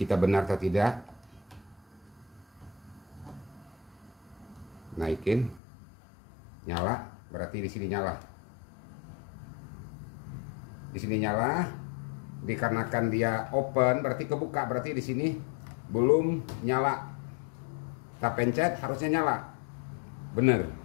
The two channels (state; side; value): drops out; right; at 5.6 s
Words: benar atau tidak. Naikin, nyala, berarti di sini nyala. Di sini nyala, dikarenakan dia open berarti kebuka, berarti di sini belum nyala. Kita pencet harusnya nyala, bener.